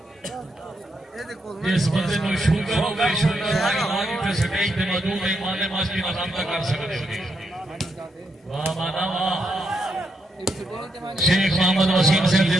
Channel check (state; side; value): normal; both; correlation 0.80